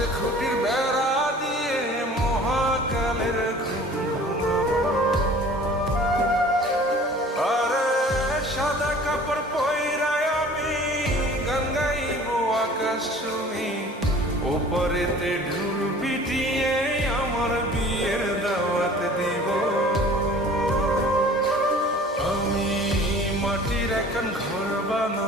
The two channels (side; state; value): both; normal; correlation 0.47